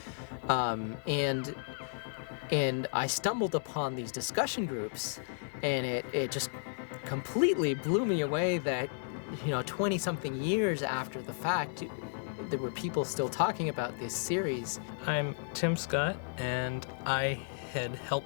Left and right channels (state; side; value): silent; right; 55 dB below the other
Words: And I stumbled upon these discussion groups, and it just completely blew me away that, 20-something years after the fact, there were people still talking about this series. I'm Tim Scott, and I had